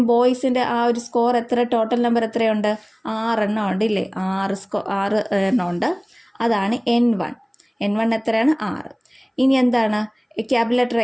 ബോയ്സിൻ്റെ ആ ഒരു സ്കോർ എത്ര, ടോട്ടൽ നമ്പർ എത്രയുണ്ട്? 6 എണ്ണം ഉണ്ട് ഇല്ലേ? 6 എണ്ണം ഉണ്ട്. അതാണ് n1 എത്രയാണ്? 6. ഇനി എന്താണ് ക്യാപിറ്റൽ ലെറ്റർ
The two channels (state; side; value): identical; both; correlation 1.00